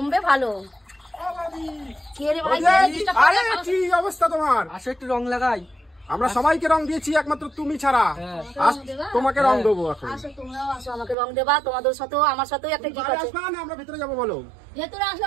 ভালো আরে কি অবস্থা তোমার? আসো একটু রং লাগাই। আমরা সবাইকে রং দিয়েছি একমাত্র তুমি ছাড়া। তোমাকে রং দেবো এখন। আসো তোমরাও আসো আমাকে রং দেবা তোমাদের সাথেও আমার সাথেও একটা কি আছে আমরা ভিতরে যাবো বলো। ভেতরে আসলে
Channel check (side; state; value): left; drops out; at 11.2 s